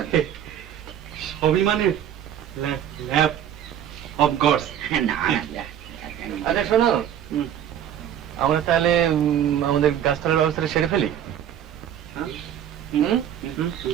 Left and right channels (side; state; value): left; quieter; 10.1 dB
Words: সবই মানে ল্যাব অফ গডস। না না, আচ্ছা শোনো, আমরা তাহলে আমাদের গাছতলার ব্যবস্থাটা সেরে ফেলি।